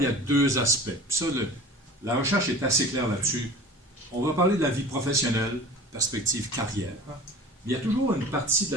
il y a deux aspects. Puis ça, la recherche est assez claire là-dessus. On va parler de la vie professionnelle, perspective carrière. Mais il y a toujours une partie de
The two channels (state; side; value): normal; both; correlation 0.40